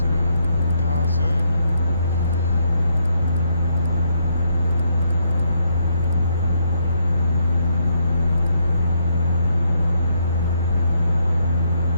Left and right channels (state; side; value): inverted; both; correlation -0.75